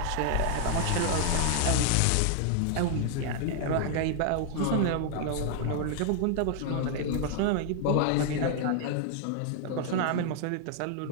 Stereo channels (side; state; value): both; different; correlation 0.00